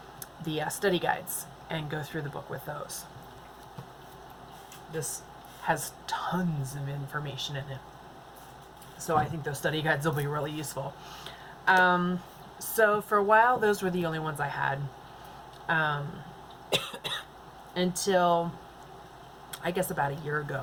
the study guides and go through the book with those. This has tons of information in it, so I think those study guides will be really useful. So for a while, those were the only ones I had, until I guess about a year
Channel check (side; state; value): both; identical; correlation 1.00